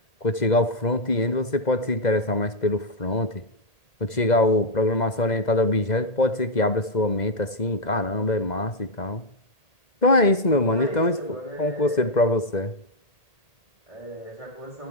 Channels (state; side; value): late; right; 2.0 ms